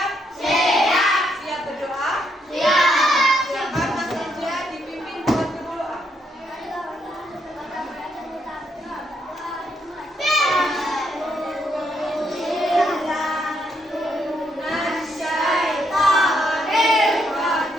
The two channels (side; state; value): both; normal; correlation 0.76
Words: Siap. Siap berdoa? Siap. Silakan Mas Eja dipimpin buat berdoa.